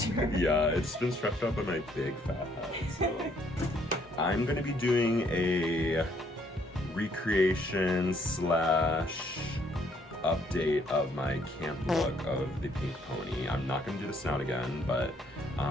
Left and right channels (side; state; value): both; normal; correlation 0.67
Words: Yeah, it's been stretched out by my big fat head. So I'm gonna be doing a recreation / update of my camp look of the pink pony. I'm not gonna do the snout again, but